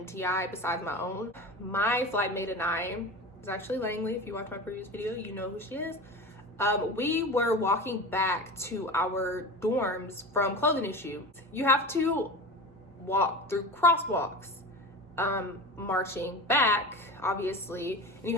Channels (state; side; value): normal; both; correlation 0.30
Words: besides my own. My flight mate and I, it's actually Langley. If you watch my previous video, you know who she is. We were walking back to our dorms from clothing issue. You have to walk through crosswalks, marching back, obviously, and you